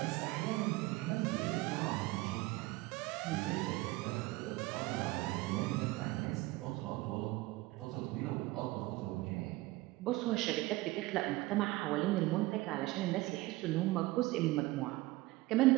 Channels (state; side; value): quieter; left; 20.0 dB